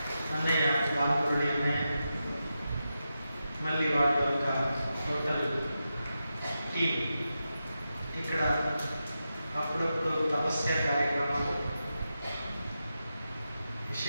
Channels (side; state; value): both; inverted; correlation -0.89